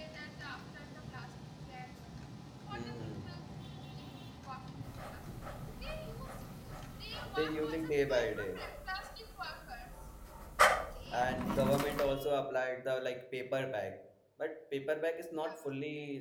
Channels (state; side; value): identical; both; correlation 1.00